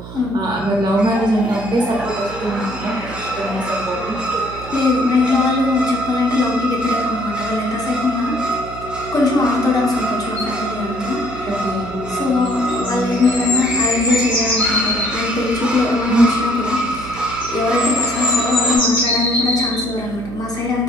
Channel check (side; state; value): right; noise; hum, 13 dB below the sound